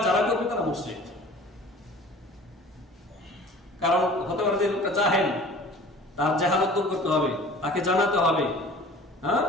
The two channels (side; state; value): both; normal; correlation 0.45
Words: যারা করবে তারা মুশরিক। কারণ হতে পারে যে লোকটা জাহেল, তার জাহালত দূর করতে হবে, তাকে জানাতে হবে, হ্যাঁ,